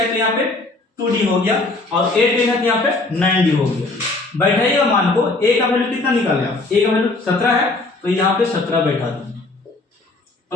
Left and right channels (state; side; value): quieter; right; 3.2 dB